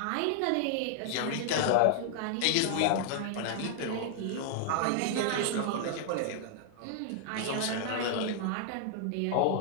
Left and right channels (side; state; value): both; different; correlation 0.00